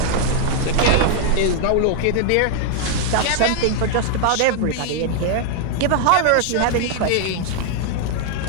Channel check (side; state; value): both; different; correlation 0.00